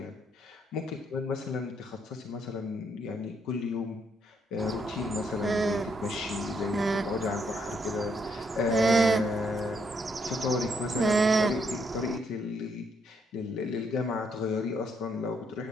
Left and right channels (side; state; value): both; normal; correlation 0.74